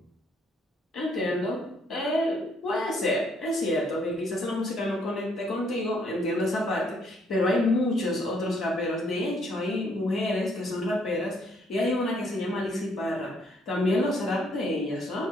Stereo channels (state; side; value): normal; both; correlation 0.68